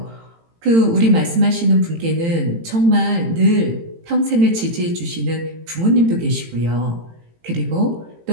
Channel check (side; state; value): left; late; 18 ms